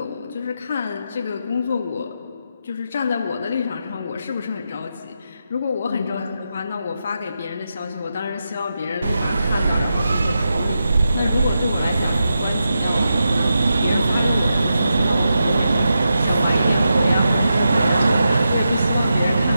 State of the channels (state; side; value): inverted; both; correlation -0.87